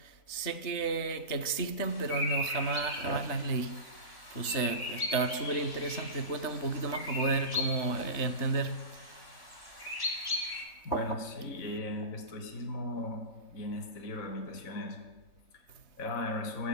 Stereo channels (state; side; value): late; right; 3.3 ms